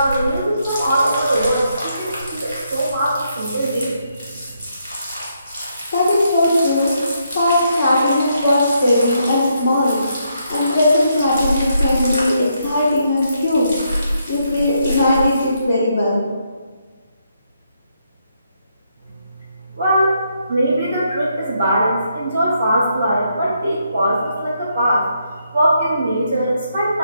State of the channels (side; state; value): both; inverted; correlation -0.77